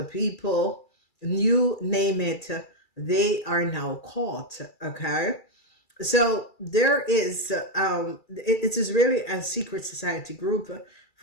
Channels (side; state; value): right; late; 2.3 ms